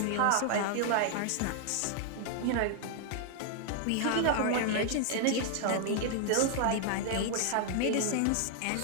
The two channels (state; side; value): different; both; correlation 0.00